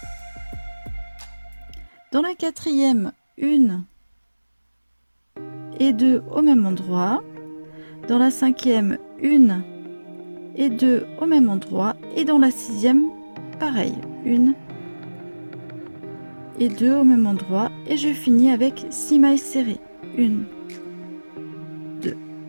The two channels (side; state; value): both; inverted; correlation -1.00